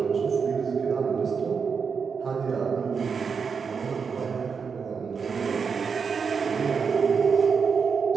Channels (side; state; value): left; quieter; 5.8 dB